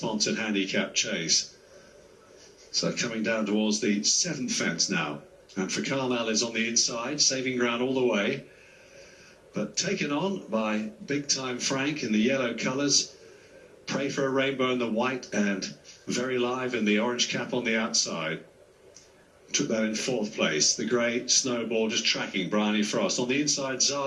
handicap chase. So coming down towards the 7th fence now. And for Carmel is on the inside, saving ground all the way. But taken on by Big Time Frank in the yellow colours. Pray for a Rainbow in the white and Very Live in the orange cap on the outside. Took that in 4th place. The grey Snowball just tracking Bryony Frost. On the inside,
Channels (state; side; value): identical; both; correlation 1.00